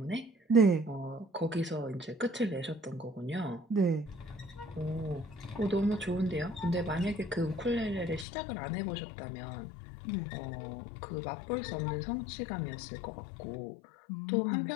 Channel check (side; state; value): right; drops out; at 8.2 s